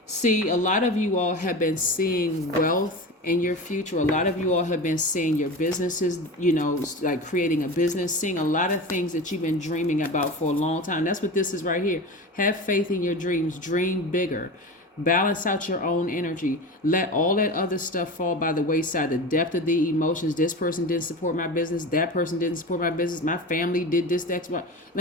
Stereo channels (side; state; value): both; normal; correlation 0.29